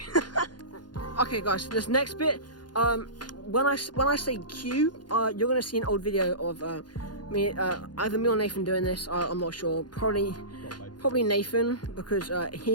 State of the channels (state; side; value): late; right; 0.70 ms